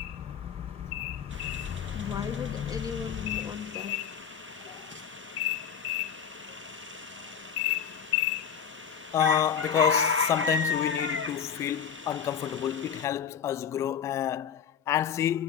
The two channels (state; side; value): quieter; right; 7.7 dB